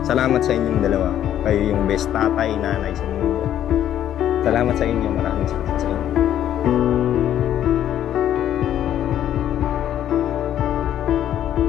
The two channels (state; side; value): quieter; right; 11.0 dB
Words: Salamat sa inyong dalawa. Kayo yung best tatay, nanay sa mundo. Salamat sa inyo. Maraming salamat sa inyo.